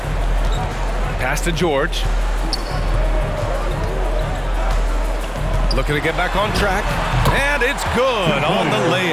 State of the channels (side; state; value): both; identical; correlation 1.00